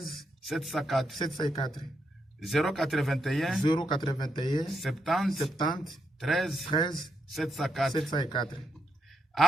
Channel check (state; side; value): normal; both; correlation 0.81